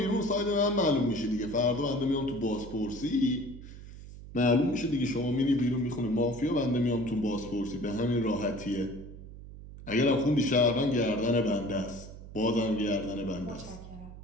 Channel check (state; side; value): noise; right; hum, 15 dB below the sound